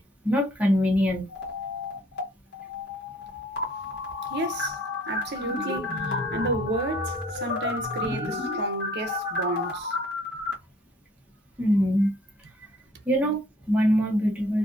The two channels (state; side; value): normal; both; correlation 0.56